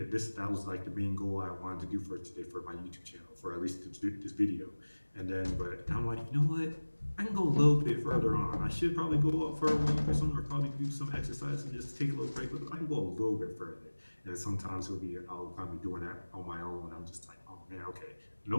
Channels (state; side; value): inverted; both; correlation -1.00